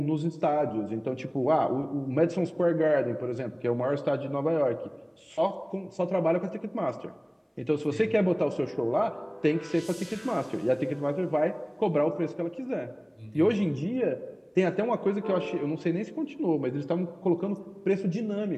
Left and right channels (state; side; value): identical; both; correlation 1.00